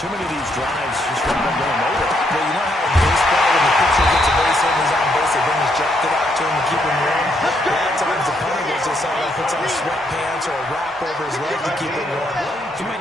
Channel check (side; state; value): both; normal; correlation 0.74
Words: many of these drives just haven't been going nowhere. Well, you know how in baseball, when the pitcher gets a base hit and he's on base, they bring his jacket out to him to keep him warm. A lot of times the punter goes to the sideline, puts on sweatpants or a wrap over his leg to keep him warm. He might